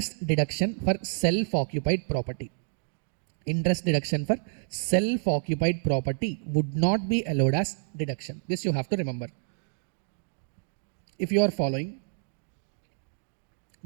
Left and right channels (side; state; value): left; silent; digital silence